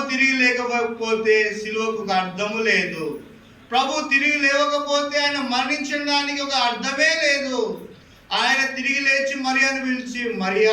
తిరిగి లేకపోతే సిలువకు ఒక అర్థము లేదు. ప్రభు తిరిగి లేవకపోతే ఆయన మరణించిన దానికి ఒక అర్థమే లేదు. ఆయన తిరిగి లేచి మరియాను పిలిచి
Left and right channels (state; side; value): identical; both; correlation 1.00